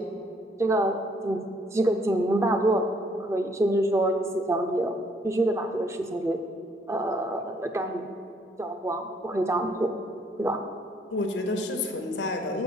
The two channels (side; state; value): both; normal; correlation 0.65